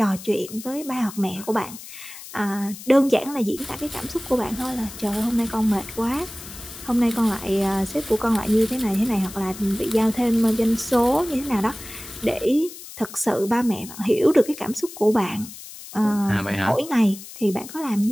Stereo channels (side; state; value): left; noise; hiss, 14 dB below the sound